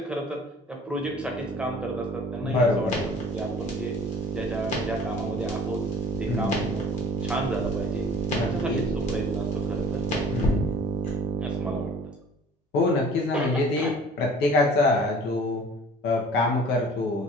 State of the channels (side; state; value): both; normal; correlation 0.47